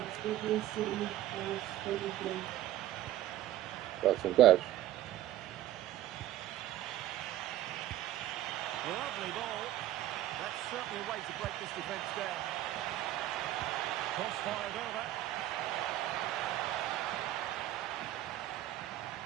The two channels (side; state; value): left; quieter; 13.7 dB